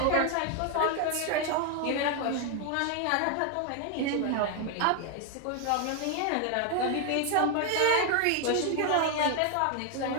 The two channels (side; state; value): both; different; correlation 0.01